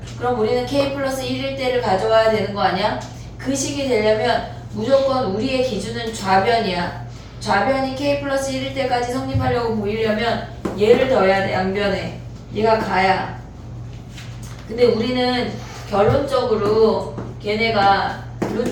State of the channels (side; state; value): both; identical; correlation 1.00